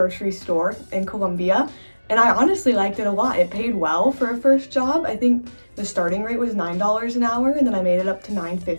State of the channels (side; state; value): both; inverted; correlation -1.00